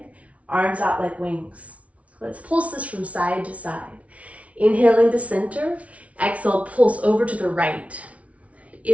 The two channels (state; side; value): late; left; 0.065 ms